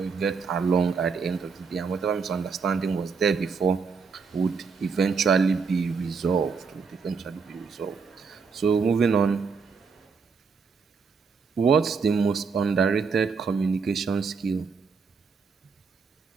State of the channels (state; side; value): quieter; left; 5.2 dB